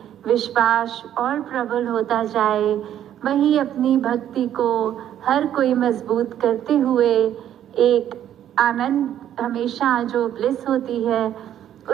विश्वास और प्रबल होता जाए, वही अपनी भक्ति को हर कोई मजबूत करते हुए एक आनंद हमेशा जो ब्लिस होती है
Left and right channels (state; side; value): quieter; left; 10.9 dB